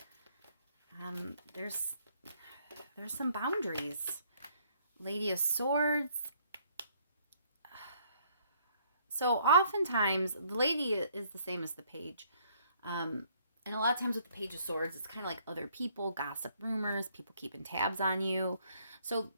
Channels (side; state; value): both; inverted; correlation -0.65